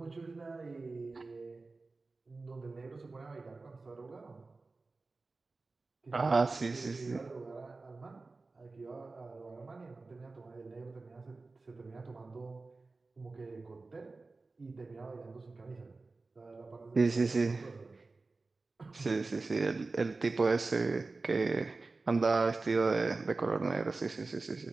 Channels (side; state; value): left; quieter; 3.7 dB